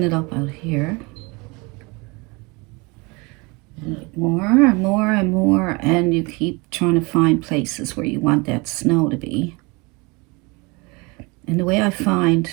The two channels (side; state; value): left; quieter; 27.2 dB